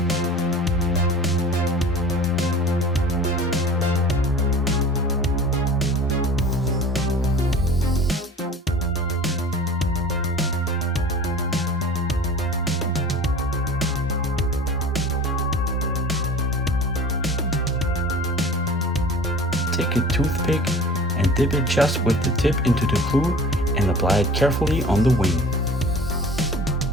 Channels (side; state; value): both; normal; correlation 0.41